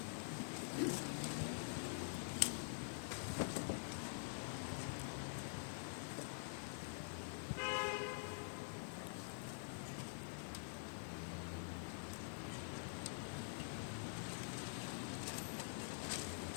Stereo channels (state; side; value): silent; right; digital silence